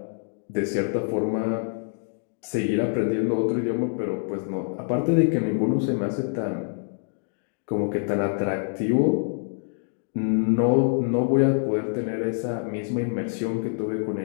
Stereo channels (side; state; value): right; silent; digital silence